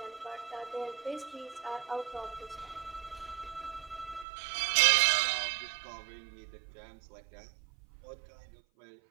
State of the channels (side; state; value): left; drops out; at 4.2 s